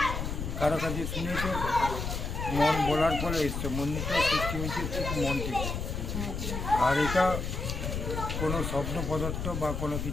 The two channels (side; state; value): left; noise; rumble, 4 dB below the sound